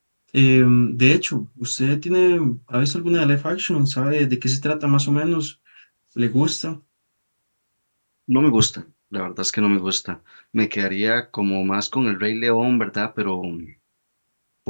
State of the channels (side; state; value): both; inverted; correlation -1.00